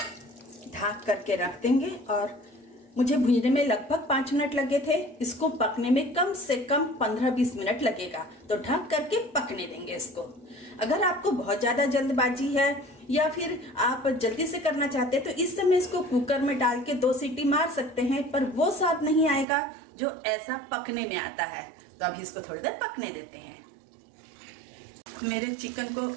ढक करके रख देंगे। और मुझे भूनने में लगभग 5 मिनट लगे थे, इसको पकने में कम से कम 15-20 मिनट लगेगा। तो ढक करके पकने देंगे इसको। अगर आपको बहुत ज़्यादा जल्दबाजी है या फिर आप जल्दी से करना चाहते हैं तो इस समय इसको कुकर में डाल के 2 सीटी मार सकते हैं, पर वो स्वाद नहीं आएगा जो ऐसा पकने में आता है। तो अभी इसको थोड़ी देर पकने देते हैं। मेरे चिकन को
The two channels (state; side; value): drops out; left; at 19.5 s